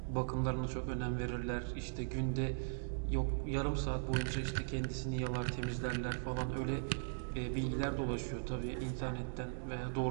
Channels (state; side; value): silent; left; digital silence